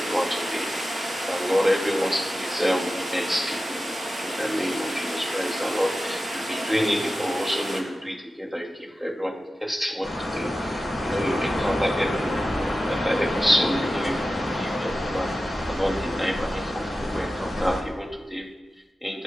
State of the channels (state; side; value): normal; both; correlation 0.94